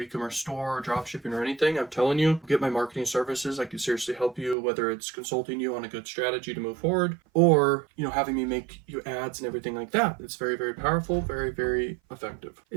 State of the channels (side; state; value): left; drops out; at 4.5 s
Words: store or drop shipping or anything, I'm telling you, get my marketing services. I can seriously help you, whether it's consulting you on a good strategy to move forward, or having me make you ads and everything like that. It's very, very powerful, very, very effective.